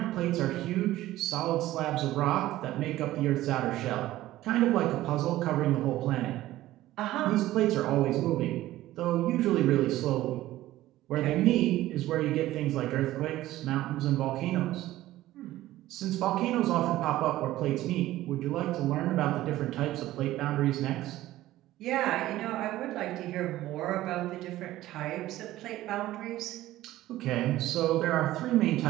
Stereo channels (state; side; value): quieter; left; 15.4 dB